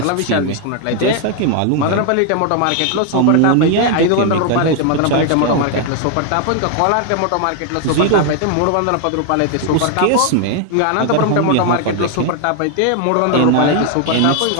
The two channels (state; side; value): different; both; correlation 0.00